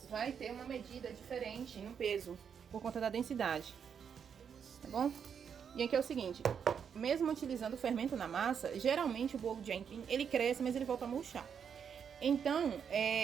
vai ter uma medida diferente no peso, por conta da densidade, tá bom? E aqui é o seguinte, mesmo utilizando o fermento na massa, geralmente o bolo de aipim, ele cresce, mas ele volta a murchar. Então,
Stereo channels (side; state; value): left; quieter; 7.3 dB